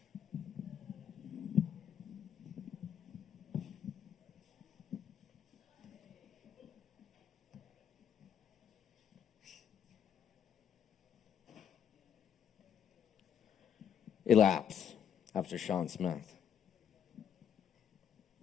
Elapse after Sean Smith.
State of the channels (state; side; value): quieter; right; 8.6 dB